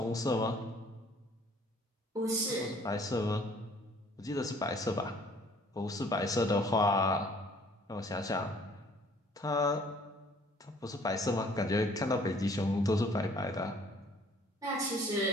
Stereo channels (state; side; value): normal; both; correlation 0.57